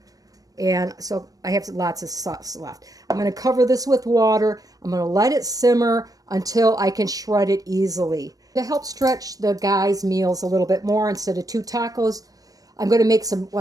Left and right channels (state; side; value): late; left; 0.18 ms